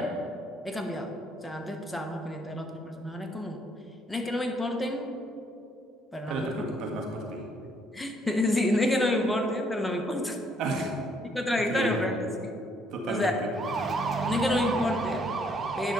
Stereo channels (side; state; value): both; normal; correlation 0.68